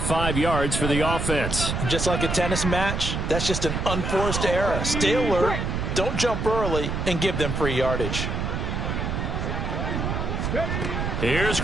yards for the offense. Just like a tennis match, that's just an unforced error. Stay alert, don't jump early, and give them free yardage. Here's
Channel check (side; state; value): right; noise; rumble, 2 dB below the sound